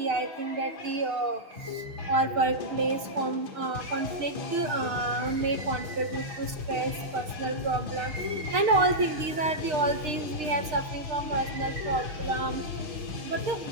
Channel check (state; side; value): late; left; 6.6 ms